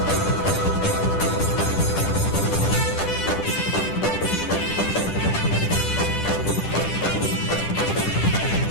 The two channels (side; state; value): right; late; 10 ms